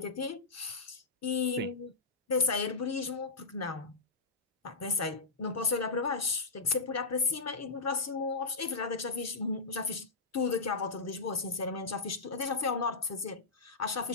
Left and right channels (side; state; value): right; quieter; 4.0 dB